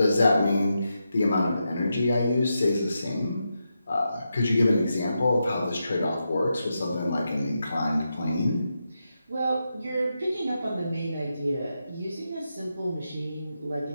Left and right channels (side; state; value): both; inverted; correlation -0.86